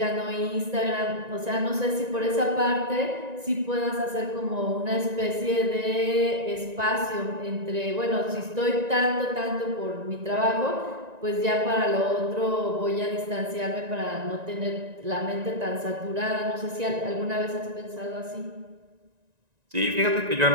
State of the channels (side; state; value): left; late; 1.9 ms